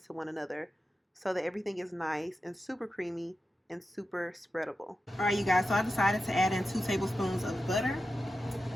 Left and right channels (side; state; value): both; normal; correlation 0.91